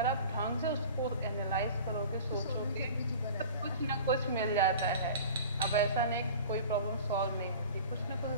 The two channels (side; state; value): both; inverted; correlation -0.39